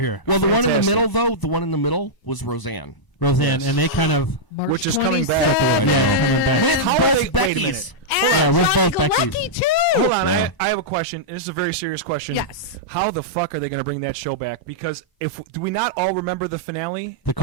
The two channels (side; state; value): right; late; 1.0 ms